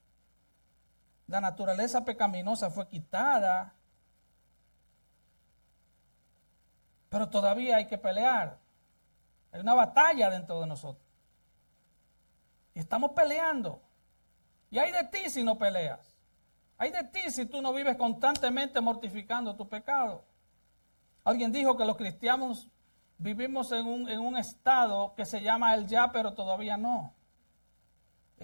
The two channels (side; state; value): both; inverted; correlation -1.00